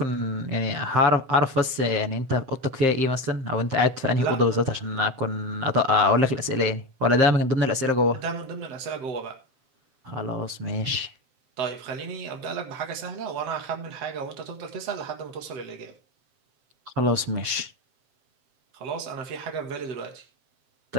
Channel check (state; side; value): late; left; 7.7 ms